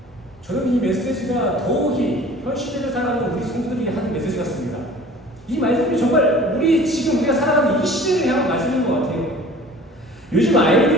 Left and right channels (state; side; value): normal; both; correlation 0.46